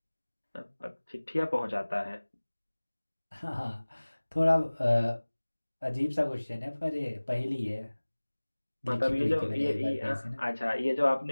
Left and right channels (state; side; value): inverted; both; correlation -1.00